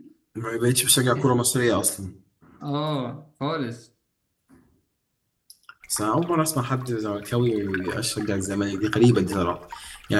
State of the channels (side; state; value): both; identical; correlation 1.00